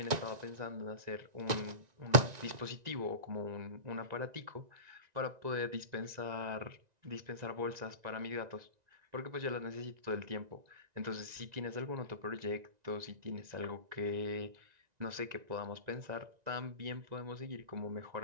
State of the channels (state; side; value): late; left; 1.9 ms